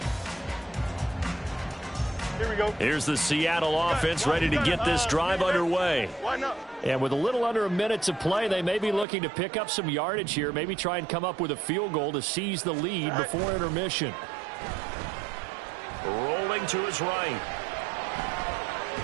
Here we go. Here's the Seattle offense ready to get this drive underway. And with a little under a minute to play, they may be looking to pick up some yardage here, maybe try and come up with a field goal to seize the lead before intermission. Rolling to his right.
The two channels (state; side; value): drops out; left; at 9.1 s